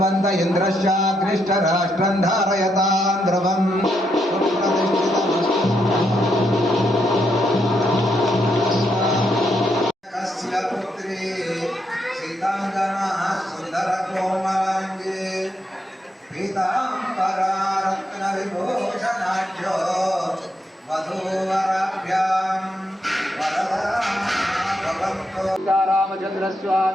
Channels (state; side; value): normal; both; correlation 0.79